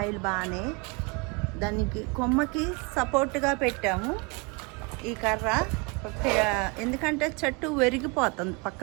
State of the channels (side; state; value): left; quieter; 29.8 dB